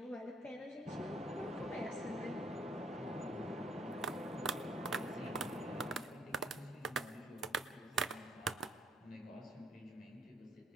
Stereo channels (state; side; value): normal; both; correlation 0.68